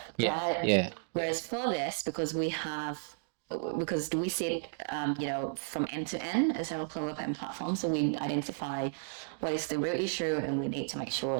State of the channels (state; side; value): silent; left; digital silence